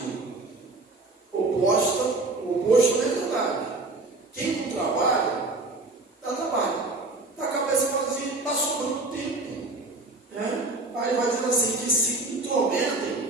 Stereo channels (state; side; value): quieter; left; 3.2 dB